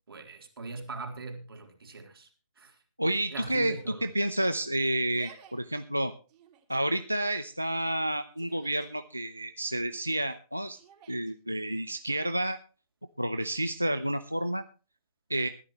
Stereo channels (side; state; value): both; inverted; correlation -0.92